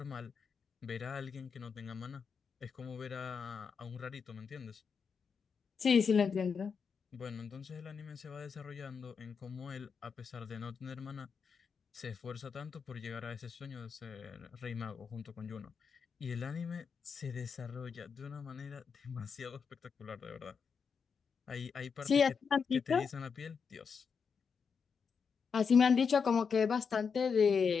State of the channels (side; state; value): right; quieter; 6.0 dB